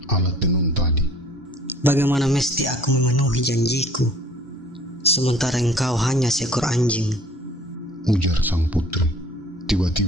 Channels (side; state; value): both; normal; correlation 0.52